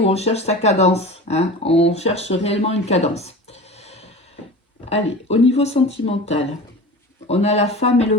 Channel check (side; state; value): both; normal; correlation 0.34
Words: on cherche sa cadence, hein. On cherche réellement une cadence. Allez, au niveau sentimental, on a la femme et le